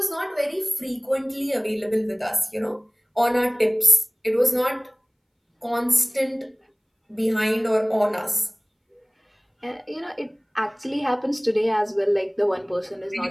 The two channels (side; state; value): both; identical; correlation 1.00